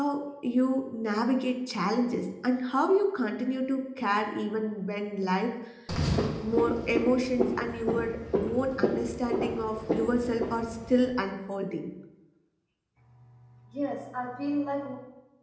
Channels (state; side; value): identical; both; correlation 1.00